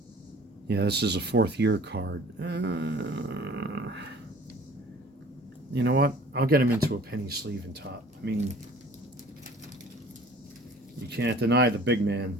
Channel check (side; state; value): both; normal; correlation 0.49